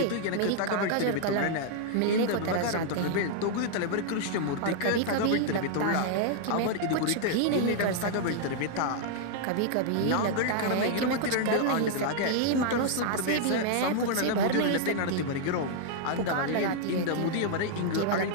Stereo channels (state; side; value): different; both; correlation -0.01